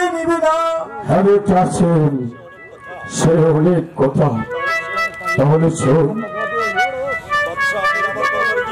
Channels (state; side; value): identical; both; correlation 1.00